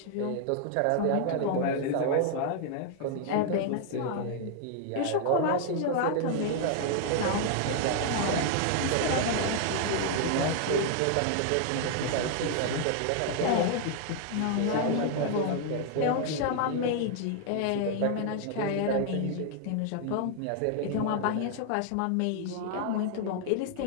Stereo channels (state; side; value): different; both; correlation 0.00